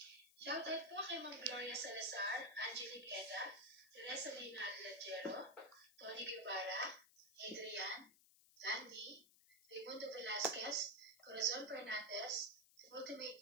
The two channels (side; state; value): left; noise; hiss, 25 dB below the sound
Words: Shoutout po kay Ma'am Gloria Salazar, Angelique Eda, Teresa Lina Lajero, Tony Guevara, Adrian, Landy, Raimundo Velasquez, Corazon Fernandez, Ultimate